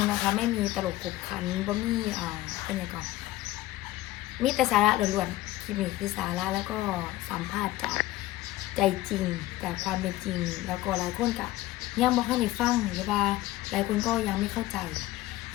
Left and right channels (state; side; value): quieter; right; 16.5 dB